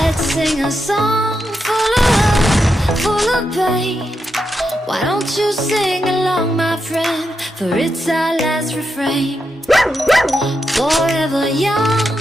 sing a song full of love, full of pain. Why don't you sing along, my friend? For it's our last refrain. Forever young,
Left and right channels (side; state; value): both; normal; correlation 0.85